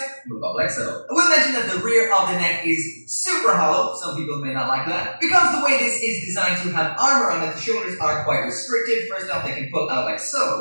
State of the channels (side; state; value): both; inverted; correlation -1.00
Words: move up like so. I will mention that the rear of the neck is super hollow. Some people may not like that. Because the way this is designed to have armor on it, the shoulders are quite restricted. First off, they can pull out like